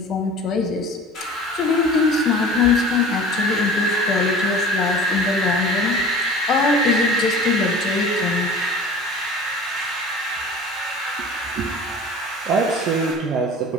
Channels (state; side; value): normal; both; correlation 0.41